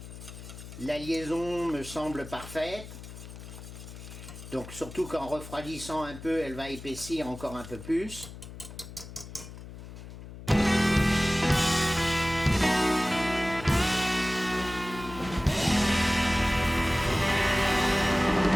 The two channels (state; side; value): noise; left; hum, 13 dB below the sound